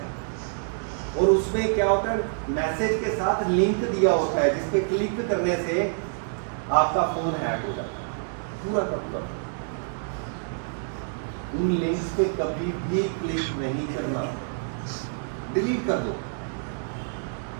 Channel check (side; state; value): left; silent; 60 dB below the other